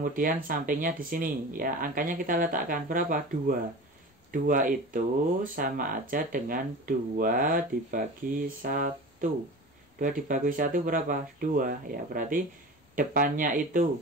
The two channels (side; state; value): both; normal; correlation 0.34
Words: sampingnya di sini ya. Angkanya kita letakkan berapa? 2. 2 itu sama aja dengan 2 dibagi 1. 2 dibagi 1 berapa? 2 ya. Berarti depannya itu